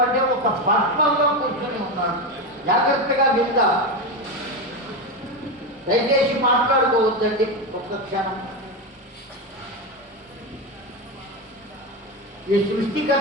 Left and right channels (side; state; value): both; normal; correlation 0.15